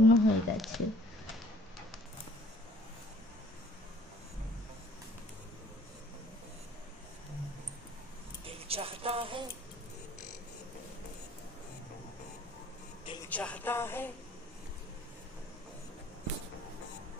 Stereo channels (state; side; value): normal; both; correlation 0.55